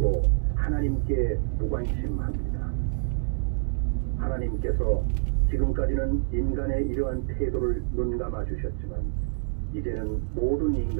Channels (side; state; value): left; silent; digital silence